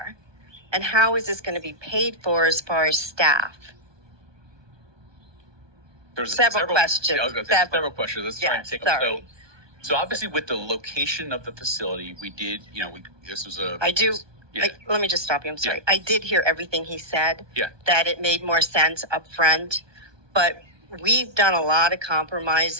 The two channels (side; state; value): left; late; 1.2 ms